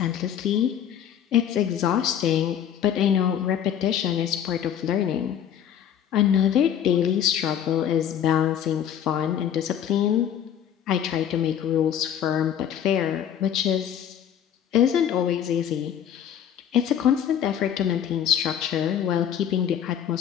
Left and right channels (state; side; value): quieter; right; 9.4 dB